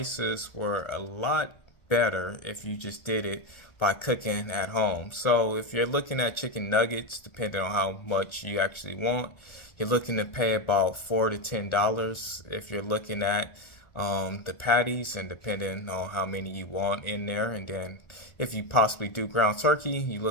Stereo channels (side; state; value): right; late; 1.3 ms